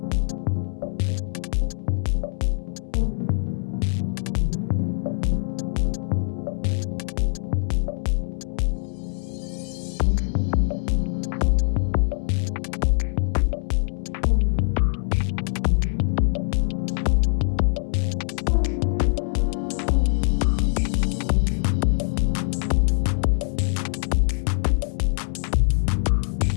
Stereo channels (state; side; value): silent; right; 63 dB below the other